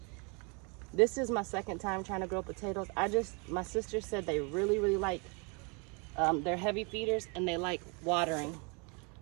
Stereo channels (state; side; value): quieter; left; 32.8 dB